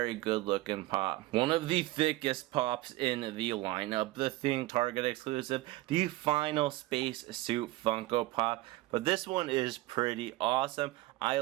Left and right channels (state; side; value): quieter; left; 18.4 dB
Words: good looking pop. One of the thickest pops in the lineup, the Thing Target exclusive, the Final Space Suit Funko Pop. But this one is pretty awesome. I